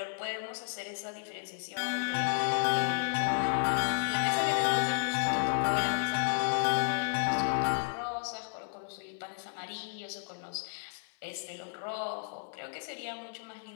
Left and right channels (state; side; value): silent; right; 56 dB below the other